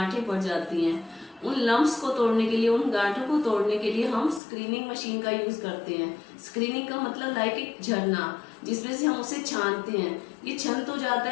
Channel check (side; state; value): right; drops out; at 4.4 s